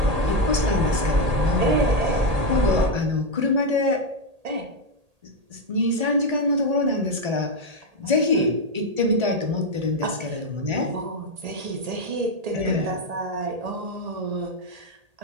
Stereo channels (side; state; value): left; late; 1.8 ms